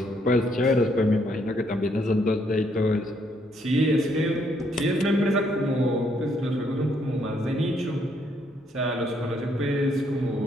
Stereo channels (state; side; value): normal; both; correlation 0.71